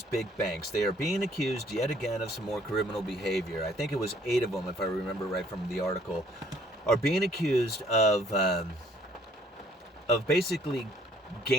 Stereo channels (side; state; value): both; normal; correlation 0.62